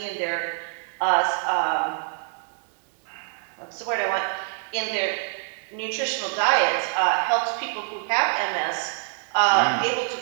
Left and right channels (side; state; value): left; silent; 61 dB below the other